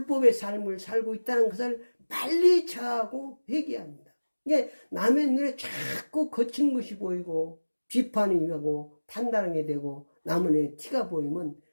삶을 살고 있다는 것을 빨리 자하고 회개합니다. 이게 남의 눈에 자꾸 거친 것이 보이고 비판이 하고 판단하게 되고 남의 눈에 티가 보이면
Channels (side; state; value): both; inverted; correlation -1.00